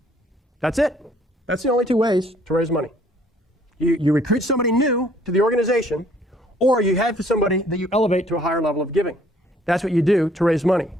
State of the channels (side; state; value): both; normal; correlation 0.61